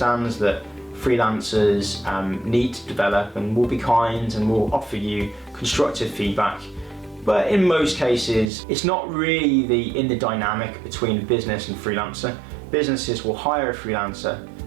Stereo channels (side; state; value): left; drops out; at 8.5 s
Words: that freelancers need to develop and will be kind and will offer you constructive feedback. But in most cases, it's not really in the dynamic between business and freelancer. Businesses will hire a freelancer